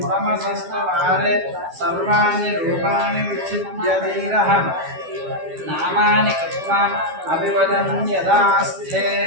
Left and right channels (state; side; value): late; left; 12 ms